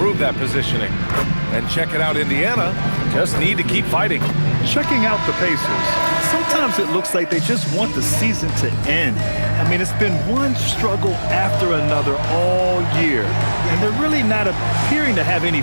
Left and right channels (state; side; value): inverted; both; correlation -1.00